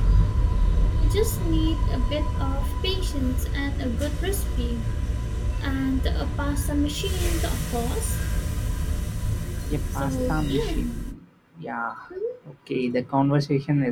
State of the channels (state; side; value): identical; both; correlation 1.00